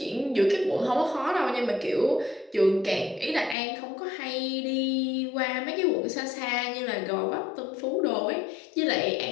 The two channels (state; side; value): drops out; right; at 3.6 s